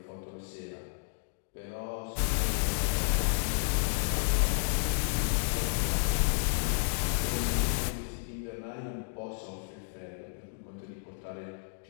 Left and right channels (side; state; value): right; silent; digital silence